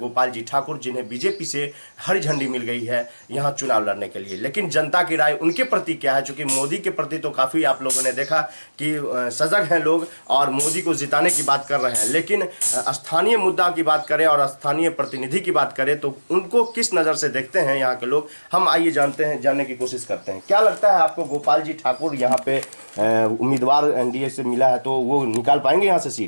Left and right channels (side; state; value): both; inverted; correlation -1.00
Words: जी ठाकुर, जिन्हें बीजेपी से हरी झंडी मिल गई है यहाँ चुनाव लड़ने के लिए। लेकिन जनता की राय उनके प्रति क्या है? चूंकि मोदी के प्रति तो काफ़ी आप लोगों ने देखा कि सजग हैं लोग और मोदी को जिताने की बात कर रहे हैं, लेकिन स्थानीय मुद्दा की बात करें और स्थानीय प्रतिनिधि की बात करें तो उनको किस नज़र से देखते हैं यहाँ के लोग, हम आइए जानने की कोशिश करते हैं। क्या लगता है आपको, गोपाल जी ठाकुर यहाँ पे उम्मीदवार एनडीए से मिला है तो वो निकाल पाएंगे यहाँ से